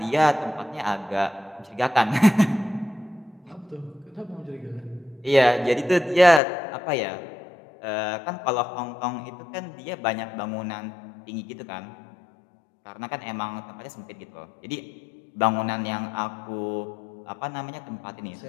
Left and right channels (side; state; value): right; drops out; at 6.4 s